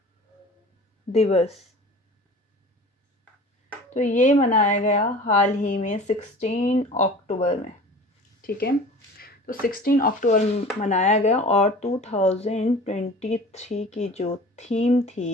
दिवस। तो ये मनाया गया हाल ही में 16 अक्टूबर में, ठीक है। तो 16 अक्टूबर मनाया गया और 2023 की जो थीम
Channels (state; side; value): normal; both; correlation 0.41